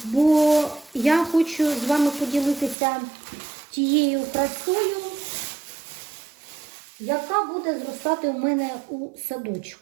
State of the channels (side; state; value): left; drops out; at 2.8 s